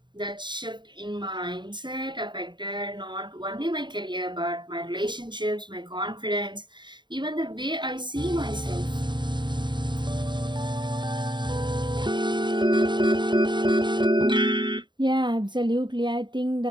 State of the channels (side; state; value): left; late; 0.22 ms